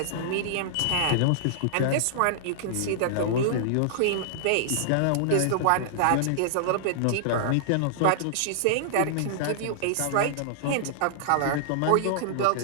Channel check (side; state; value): both; different; correlation -0.01